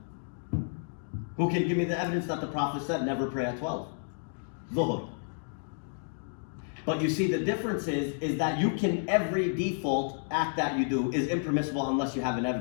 Who can give me the evidence that the Prophet said, never pray at 12? Dhuhr. But you see, the difference is that you can, every default act that you do is impermissible unless you have an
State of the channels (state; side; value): silent; right; digital silence